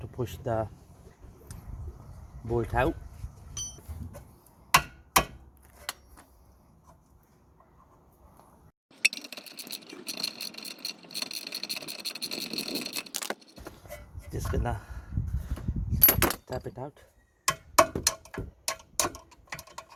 push the bolt out. Just gonna tap it out.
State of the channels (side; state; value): both; identical; correlation 1.00